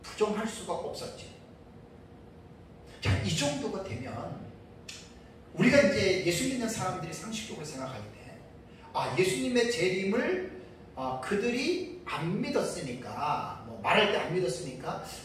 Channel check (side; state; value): both; identical; correlation 1.00